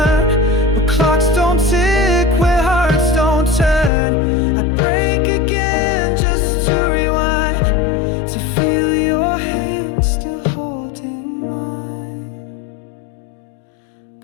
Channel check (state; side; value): drops out; right; at 3.9 s